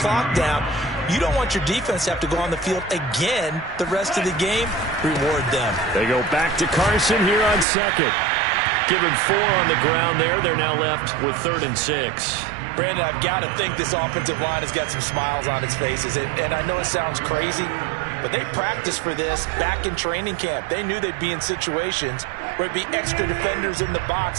down. You don't want your defense to have to go on the field again the rest of the game. Reward them. They go back to Carson here on 2nd. Give him 4 on the ground there. They're now left with 3rd and 6. Brandon, I've got to think this offensive line has got some smiles on its faces. And I know it sounds crazy, but they practiced for this back in training camp. They knew they'd be in situations where it'd be extra defenders in the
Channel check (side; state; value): left; drops out; at 7.7 s